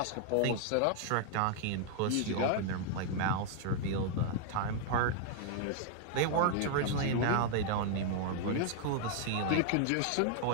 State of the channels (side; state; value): both; different; correlation 0.00